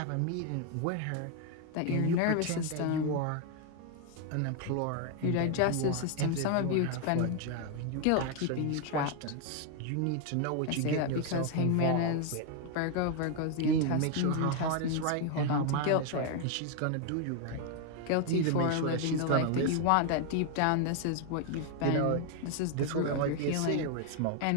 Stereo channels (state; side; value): different; both; correlation 0.01